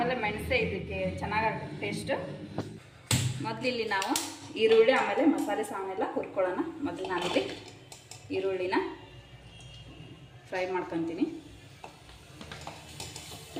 ಮೆಣಸೇ ಇದಕ್ಕೆ ಚೆನ್ನಾಗಾಗುತ್ತೆ ಟೇಸ್ಟು. ಮೊದಲಿಲ್ಲಿ ನಾವು ಈರುಳ್ಳಿ ಆಮೇಲೆ ಮಸಾಲೆ ಸಾಮಾನೆಲ್ಲ ಹುರ್ಕೊಳ್ಳೋಣ. ಮೊದಲು ನಾನಿಲ್ಲಿ ಈರುಳ್ಳಿನ ಫ್ರೈ ಮಾಡ್ಕೊತೀನಿ.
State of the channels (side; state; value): both; identical; correlation 1.00